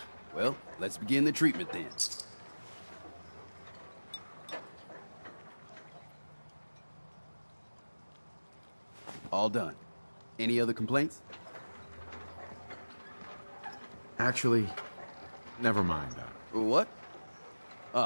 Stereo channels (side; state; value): both; inverted; correlation -1.00